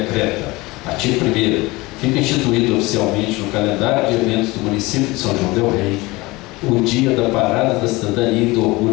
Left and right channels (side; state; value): right; quieter; 22.1 dB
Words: artigo 1º, fica instituído oficialmente no calendário de eventos do município de São João del Rei o Dia da Parada da Cidadania e do